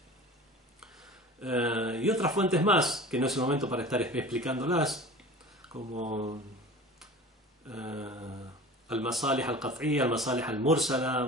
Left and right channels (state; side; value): normal; both; correlation 0.38